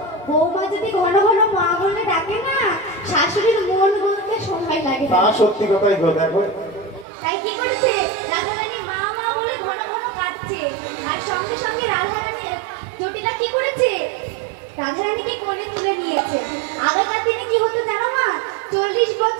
বৌমা যদি ঘন ঘন মা বলে ডাকে না, শাশুড়ির মন বলতে সময় লাগে তা না। সত্যি কথাই গো, দেখো। তাই কি করেছে? রাধারানী মা মা বলে ঘন ঘন কাঁদছে। আর সঙ্গে সঙ্গে রাধারানী জটিলা কি করেছে? রাধারানীকে কোলে তুলে নিয়েছে। আগেকার দিনে কি হতো জানো মা? 40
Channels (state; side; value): drops out; left; at 7.1 s